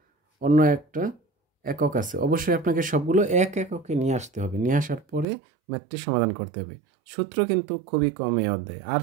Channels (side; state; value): left; drops out; at 5.2 s